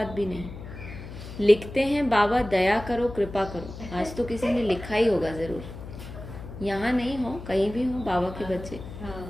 भी नहीं। लिखते हैं बाबा दया करो कृपा करो। आज तो किसी ने लिखा ही होगा जरूर, यहाँ नहीं हो कहीं भी हो बाबा के बच्चे।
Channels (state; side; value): noise; left; hum, 12 dB below the sound